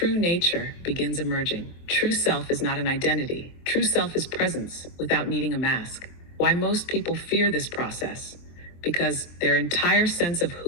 nature begins emerging. True self is not an identity. True self is presence without needing a mask. Why most people fear this process? Because their entire sense of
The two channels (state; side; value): late; right; 23 ms